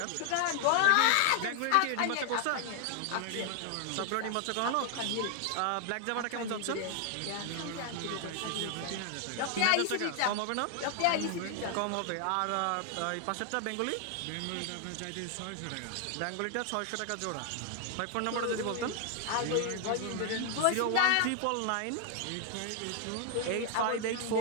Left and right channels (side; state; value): both; different; correlation 0.00